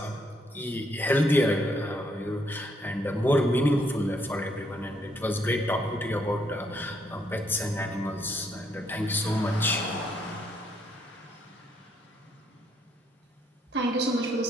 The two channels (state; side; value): normal; both; correlation 0.72